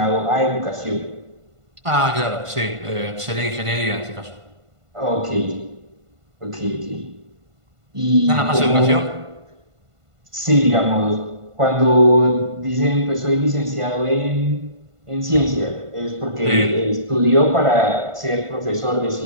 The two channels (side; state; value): left; late; 1.5 ms